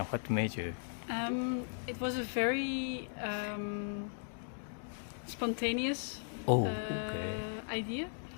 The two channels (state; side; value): silent; right; digital silence